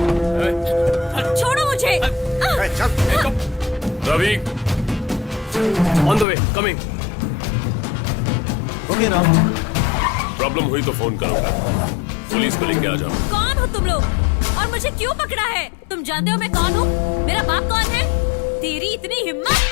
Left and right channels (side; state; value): right; drops out; at 6.2 s